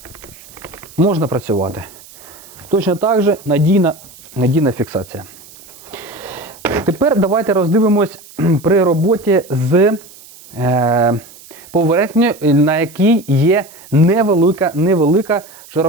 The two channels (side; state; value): right; noise; hiss, 21 dB below the sound